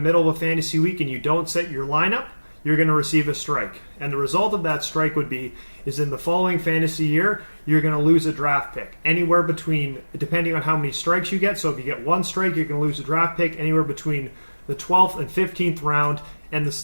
of a fantasy week and you don't set your lineup, you're going to receive a strike. And the result of that strike is in the following fantasy year, you're going to lose a draft pick. Anywhere between, depending on how many strikes you get, so if you get one strike, you're going to lose a draft pick anywhere between the 12th and 15th round. And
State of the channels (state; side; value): inverted; both; correlation -1.00